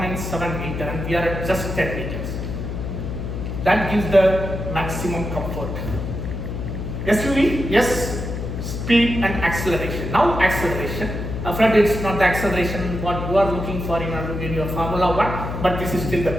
meter, and we are at just 10 meters. That gives the maximum comfort. SUV, yes, speed and acceleration. Now acceleration. Afraid it's not the acceleration what you are looking for in your Formula 1, but this is still the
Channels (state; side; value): noise; left; hum, 5 dB below the sound